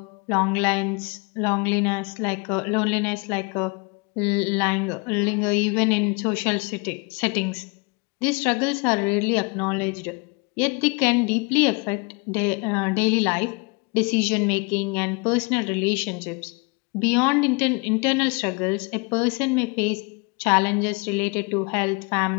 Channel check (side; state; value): right; quieter; 30.1 dB